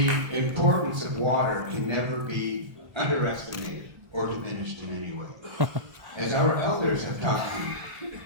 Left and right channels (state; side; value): late; left; 1.2 ms